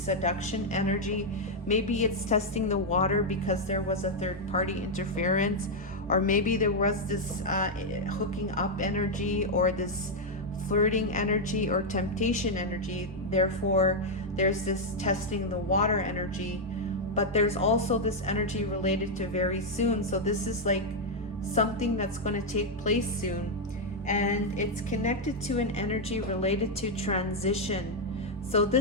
energy. Maybe it's testing the water because there was a third-party interference, or maybe there was this hooking up energy, or this flirting energy, or temptation energy. Therefore, there's this testing the water energy, but there's also this energy related to very soon. So this is like something that's going to take place soon, and it's connected to an energy related to transition. So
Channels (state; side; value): normal; both; correlation 0.00